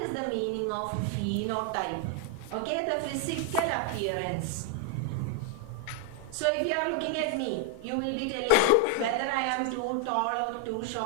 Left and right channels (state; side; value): different; both; correlation 0.00